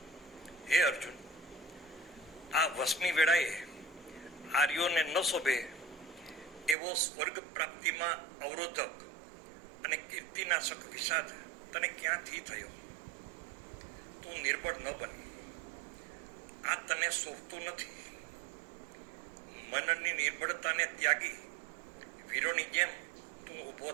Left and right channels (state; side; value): drops out; left; at 6.8 s